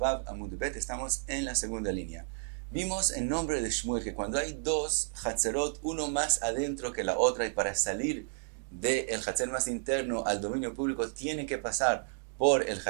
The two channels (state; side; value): silent; left; digital silence